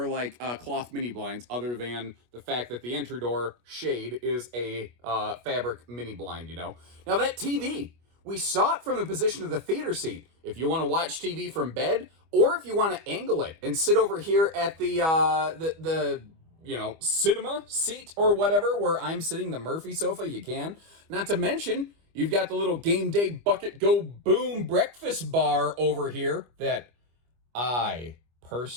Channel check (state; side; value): late; left; 25 ms